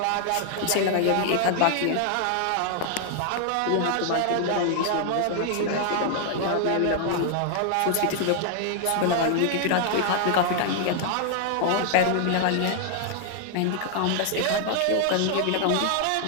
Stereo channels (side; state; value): both; different; correlation 0.00